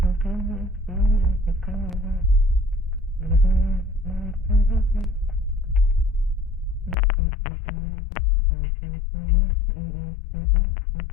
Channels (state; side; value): drops out; right; at 7.0 s